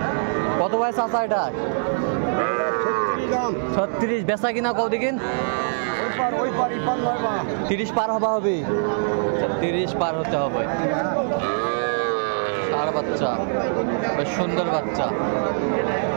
কত ভাই চাচা এটা? 36। বেচা কিনা কত দিন? 30 পার হবে। 30 পার হতে হবে। ষাঁড় বাচ্চা, বেশ সুন্দর বাচ্চা।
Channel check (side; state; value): left; silent; digital silence